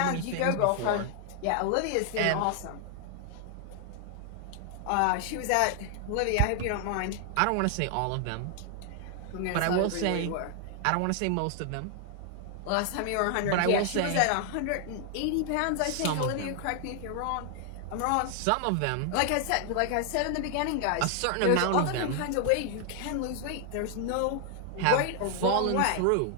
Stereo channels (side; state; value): both; different; correlation 0.00